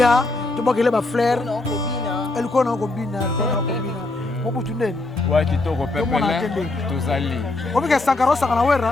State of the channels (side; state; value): right; quieter; 3.0 dB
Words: to bakele ba fleur elle kona ko bina mobutu nene ouais kitoko pepele tozali obi ka sankara sakana